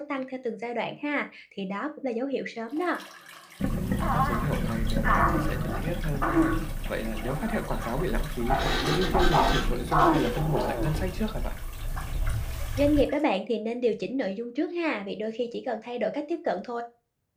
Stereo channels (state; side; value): identical; both; correlation 1.00